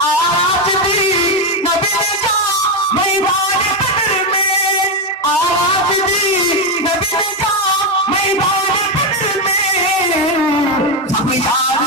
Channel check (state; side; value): normal; both; correlation 0.08